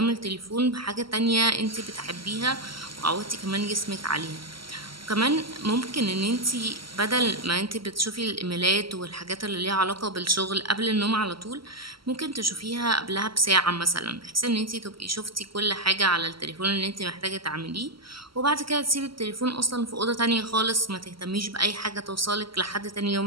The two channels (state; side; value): late; left; 0.74 ms